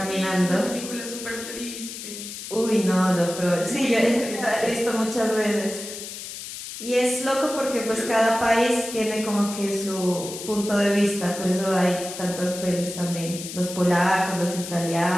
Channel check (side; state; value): left; noise; hiss, 10 dB below the sound